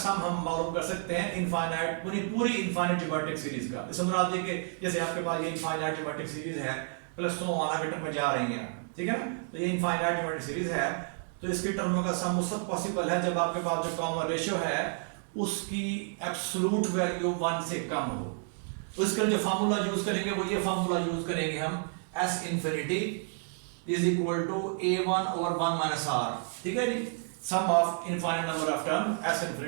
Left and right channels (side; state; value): left; silent; 57 dB below the other